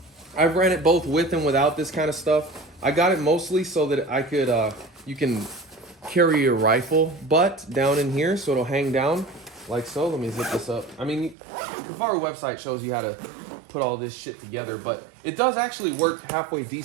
ran it both with and without this kind of stuff. I got it mostly so that I could, you can carry your rifle butt down in here so it'll hang down like so. Let me zip this up. I mean, the Kifaru website shows you how to put all this shit together, but it does actually work halfway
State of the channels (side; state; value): left; drops out; at 11.4 s